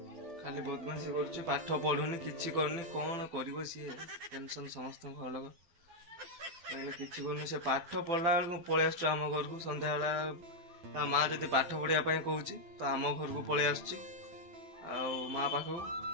खाली बदमाशी कर पाठ पढ़ुनी किसी करनी कौन कर टेंशन समस्त घर लोग कहीं किसी करनी से पाठ पढ़ला बेलू पलि आस आम घर को सन्ध्या बेला माँ जब पाठ पढ़ापी कहूँ तो आम घर को पलि आस माँ पाख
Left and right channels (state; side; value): late; left; 12 ms